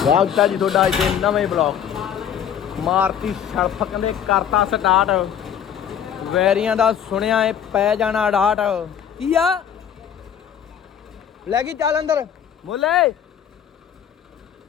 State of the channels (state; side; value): quieter; right; 8.8 dB